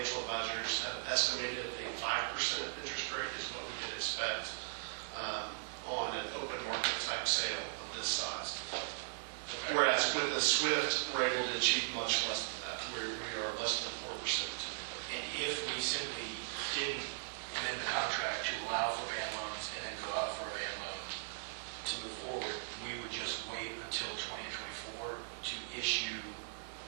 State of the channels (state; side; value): silent; left; digital silence